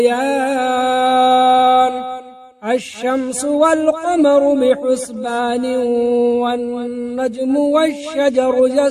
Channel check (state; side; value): identical; both; correlation 1.00